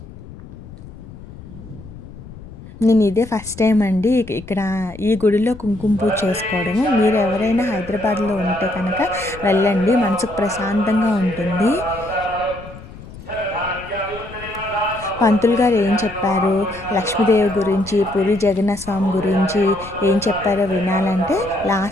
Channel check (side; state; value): left; noise; rumble, 16 dB below the sound